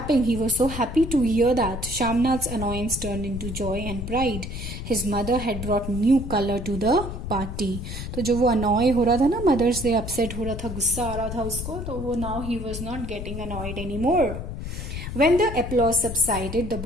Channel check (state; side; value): noise; left; rumble, 7 dB below the sound